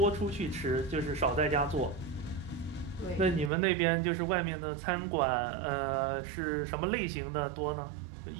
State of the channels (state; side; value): drops out; left; at 3.5 s